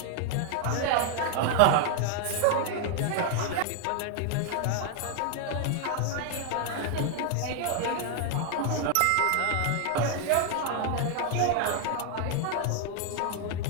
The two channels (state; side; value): different; both; correlation 0.00